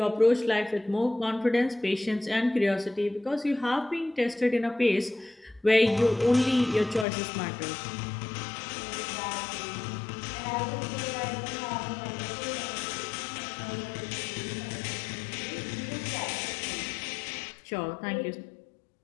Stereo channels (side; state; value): right; drops out; at 7.1 s